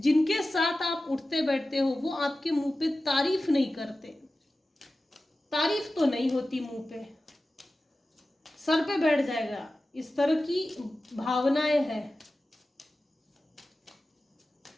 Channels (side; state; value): both; normal; correlation 0.95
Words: साथ आप उठते बैठते हो, वो आपके मुंह पे तारीफ नहीं करते। तारीफ तो नहीं होती मुंह पे, सर पे बैठ जाएगा, इस तरह की भावनाएं हैं।